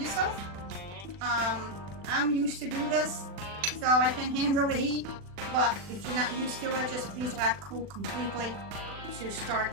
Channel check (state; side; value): late; left; 40 ms